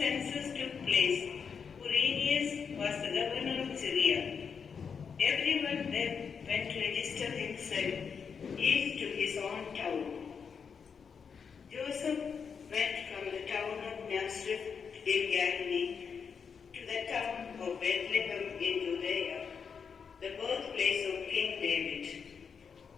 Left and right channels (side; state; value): right; quieter; 6.3 dB